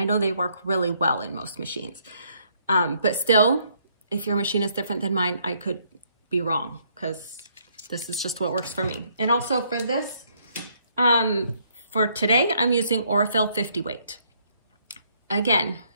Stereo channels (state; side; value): inverted; both; correlation -0.69